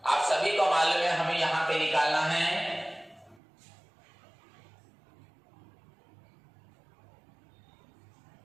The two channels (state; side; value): drops out; left; at 3.4 s